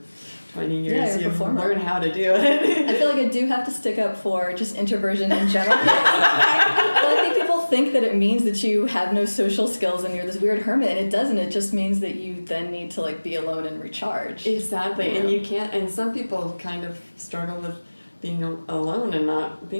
20 years, you learn how to do it. I feel like I do have to stick up for just introversion in general. Well, I think people think that it means that you have no social skills and you're this weird hermit, and it doesn't. It just means that you then need to be alone and recharge. Exactly, and you can't. And some people kind of struggle with being alone and not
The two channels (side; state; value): both; inverted; correlation -1.00